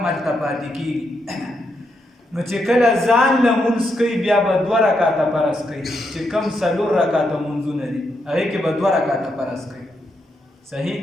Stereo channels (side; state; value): both; normal; correlation 0.81